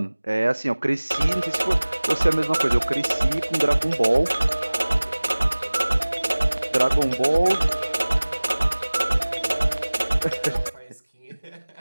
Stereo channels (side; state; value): both; inverted; correlation -1.00